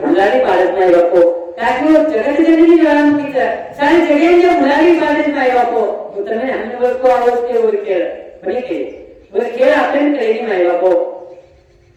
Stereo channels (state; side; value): identical; both; correlation 1.00